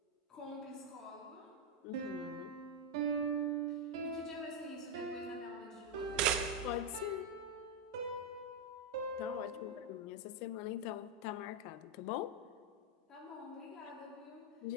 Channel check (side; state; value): both; normal; correlation 0.02